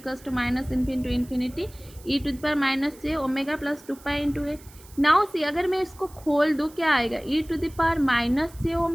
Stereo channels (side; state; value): right; noise; hiss, 23 dB below the sound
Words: to minus infinity to infinity e to the power minus j omega plus 2 pi into a. Now see, अगर मैं इसको खोल दूँ क्या आएगा? e to the power minus j